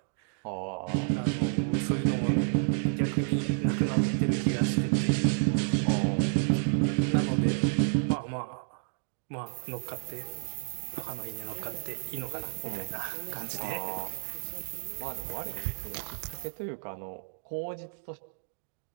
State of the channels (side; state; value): left; silent; digital silence